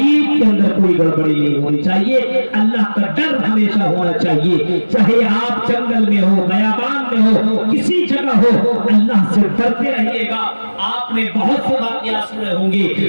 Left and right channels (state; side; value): inverted; both; correlation -1.00